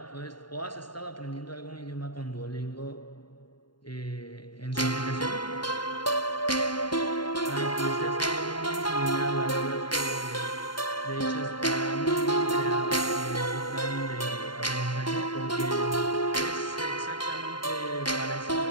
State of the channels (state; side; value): late; right; 0.72 ms